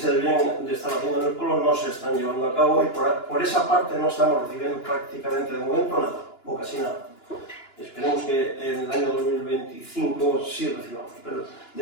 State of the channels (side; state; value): right; late; 2.9 ms